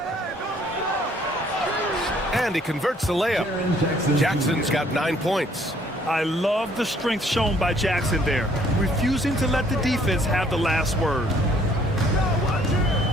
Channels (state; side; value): normal; both; correlation 0.62